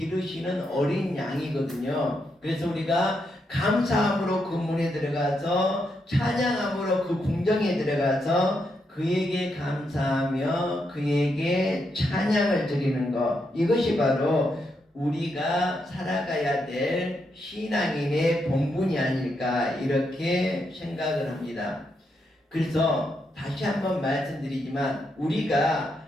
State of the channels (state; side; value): normal; both; correlation 0.81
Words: 어린 양이거든요. 그래서 우리가 감사함으로 그 문에 들어가서 찬양함으로 그 궁정에 들어가서 그에게 감사하며 그에게 찬양을 드리는 것, 이것이 바로 우리가 살아가야 될 신앙인의 본분이 아닐까 이렇게 생각을 합니다. 그래서 다시 한번 말씀드리지만 우리가